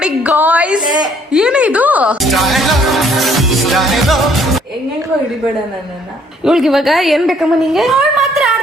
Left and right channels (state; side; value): normal; both; correlation 0.63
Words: ಗಾಯ್ಸ್. ಏನೇ ಇದು? ಹೆಂಗೆಂಗೋ ಹಿಡಿಬೇಡ ನನ್ನನ್ನ. ಇವಳಿಗೆ ಇವಾಗ ಏನ್ ಬೇಕಮ್ಮ ನಿಂಗೆ? ಅವಳು ಮಾತ್ರ